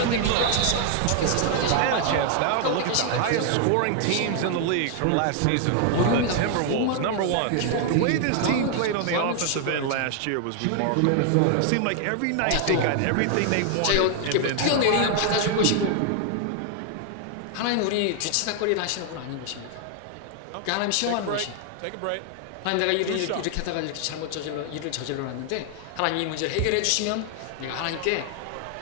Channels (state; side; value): different; both; correlation 0.00